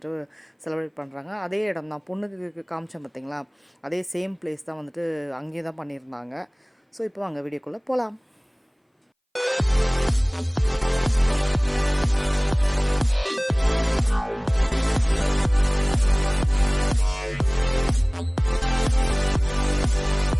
செலிப்ரேட் பண்ணுறாங்க. அதே இடம் தான், பொண்ணுக்கு காமிச்சேன் பார்த்தீங்களா, அதே சேம் பிளேஸ் தான் வந்துட்டு அங்கேயே தான் பண்ணியிருந்தாங்க. ஸோ இப்போ அங்கே வீடியோக்குள்ளே போகலாம்.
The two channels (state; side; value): identical; both; correlation 1.00